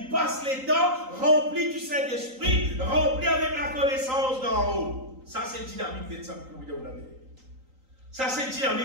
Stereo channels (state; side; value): late; left; 3.9 ms